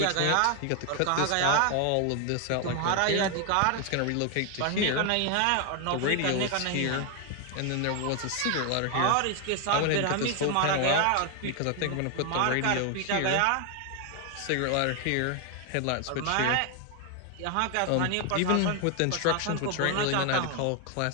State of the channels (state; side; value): different; both; correlation 0.01